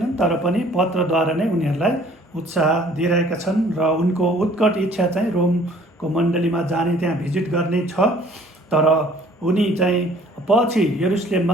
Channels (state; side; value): normal; both; correlation 0.55